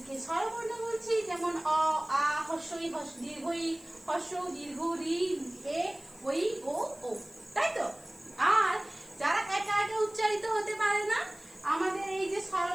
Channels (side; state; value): left; noise; hiss, 25 dB below the sound